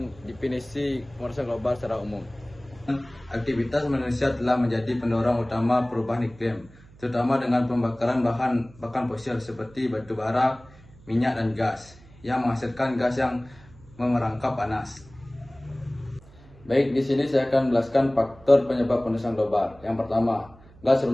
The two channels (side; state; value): right; noise; hum, 23 dB below the sound